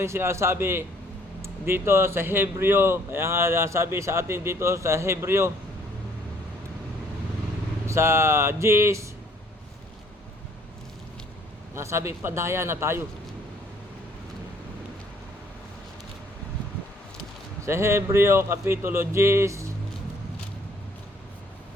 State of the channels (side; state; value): both; normal; correlation 0.61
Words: sinasabi dito sa Hebreo, kaya nga sabi sa atin dito sa Hebreo, sa 10, sabi, padaya na tayo. Sa Hebreo, Kapitulo 10,